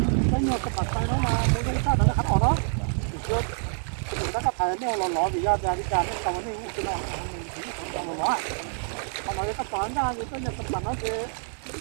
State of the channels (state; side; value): silent; left; 60 dB below the other